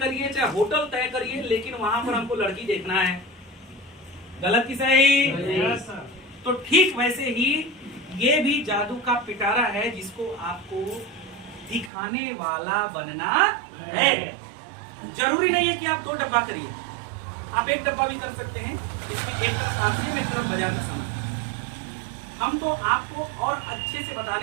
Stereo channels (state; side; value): drops out; left; at 11.9 s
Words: चाहे होटल तय करिए, लेकिन वहां पर हमको लड़की देखना है। गलत की सही? तो ठीक वैसे ही ये भी जादू का पिटारा है जिसको आपको दिखाने वाला बनना है। जरूरी नहीं है कि आप 2 डब्बा करिए, आप 1 डब्बा भी कर सकते हैं। इसमें एक तरफ आसियम, एक तरफ बाजार का सामान। हम तो आपको और अच्छे से